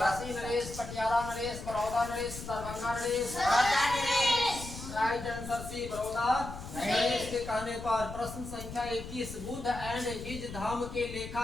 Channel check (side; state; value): left; noise; rumble, 11 dB below the sound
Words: नरेश, पटियाला नरेश, बड़ौदा नरेश, दरभंगा नरेश। राइट आंसर सी बड़ौदा नरेश के कहने पर। प्रश्न संख्या 21, बुद्ध एंड हिज धम्म के